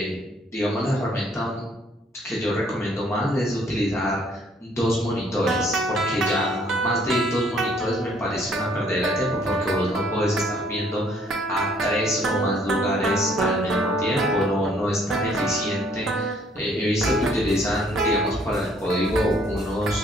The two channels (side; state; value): both; normal; correlation 0.63